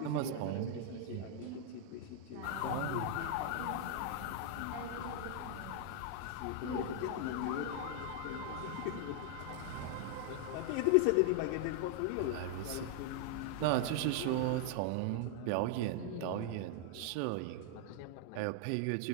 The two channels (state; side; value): different; both; correlation 0.00